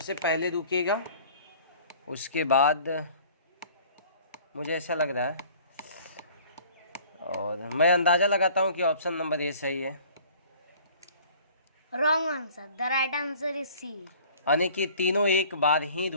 पहले रुकेगा, उसके बाद मुझे ऐसा लग रहा है, और मैं अंदाज़ा लगाता हूँ कि ऑप्शन नंबर ए सही है। Wrong answer, the right answer is C. यानी कि तीनों एक बार ही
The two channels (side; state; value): both; inverted; correlation -0.50